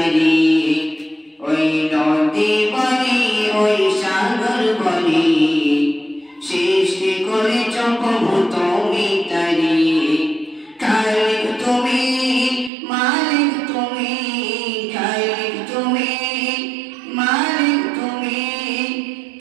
ওই নদী বলি ওই সাগর বলি সৃষ্টি করেছ প্রভু তুমি তারি খালিক তুমি মালিক তুমি খালিক তুমি মালিক তুমি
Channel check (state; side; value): drops out; left; at 12.7 s